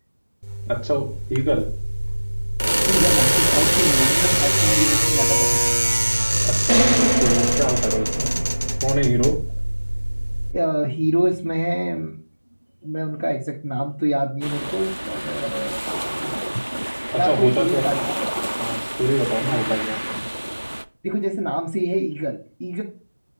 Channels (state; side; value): inverted; both; correlation -1.00